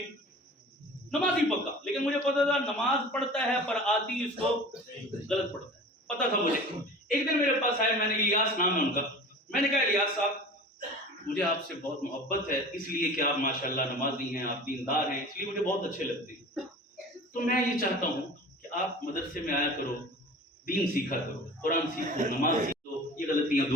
نمازی پکا, لیکن مجھے پتا تھا نماز پڑھتا ہے پر آتی اس کو غلط پڑھتا ہے, پتا تھا مجھے. ایک دن میرے پاس آئے, میں نے الیاس نام ہے ان کا, میں نے کہا الیاس صاحب مجھے آپ سے بہت محبت ہے, اس لیے کہ آپ ماشاءاللہ نمازی ہیں, آپ دیندار ہیں, اس لیے مجھے بہت اچھے لگتے ہیں. تو میں یہ چاہتا ہوں کہ آپ مدرسے میں آیا کرو, دین سیکھا کرو, قرآن سیکھو, نماز سیکھو, یہ غلطیاں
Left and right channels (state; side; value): normal; both; correlation 0.40